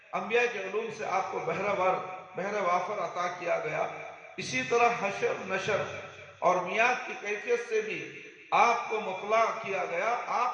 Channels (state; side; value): identical; both; correlation 1.00